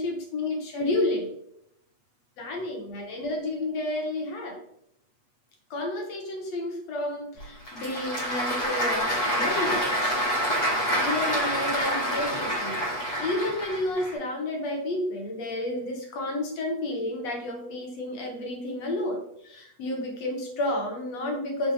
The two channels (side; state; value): right; late; 8.3 ms